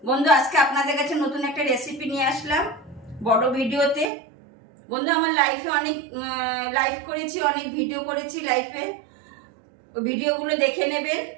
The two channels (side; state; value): left; drops out; at 4.1 s